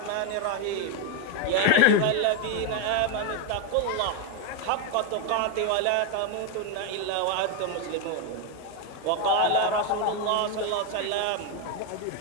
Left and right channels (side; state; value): both; different; correlation 0.01